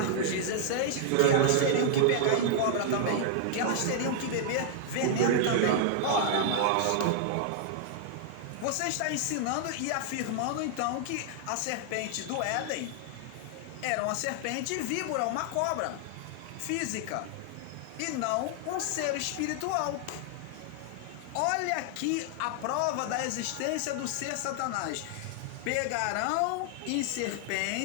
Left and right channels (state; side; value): different; both; correlation 0.00